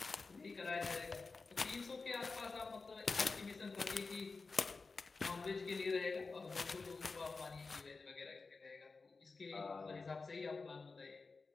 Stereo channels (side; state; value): right; quieter; 4.2 dB